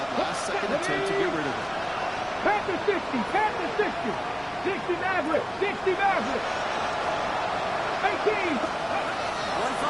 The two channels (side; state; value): both; identical; correlation 1.00